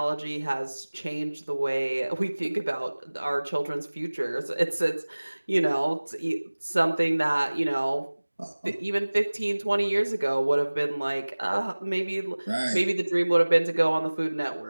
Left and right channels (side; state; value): both; inverted; correlation -1.00